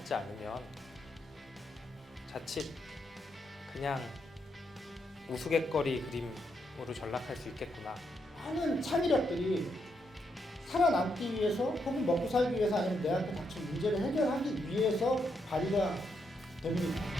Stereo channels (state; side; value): normal; both; correlation 0.79